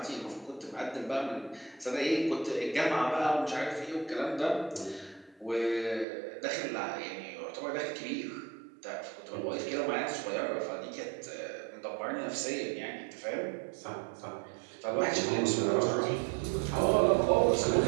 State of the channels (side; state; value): left; drops out; at 6.1 s